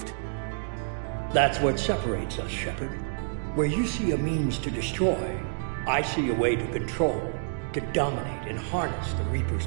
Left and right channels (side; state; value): left; silent; digital silence